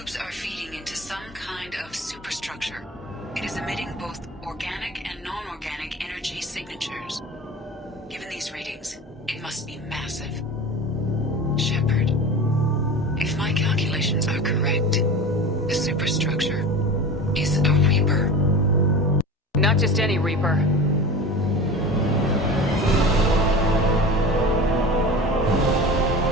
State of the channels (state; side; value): normal; both; correlation 0.33